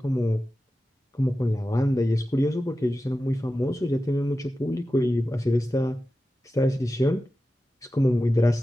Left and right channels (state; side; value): normal; both; correlation 0.93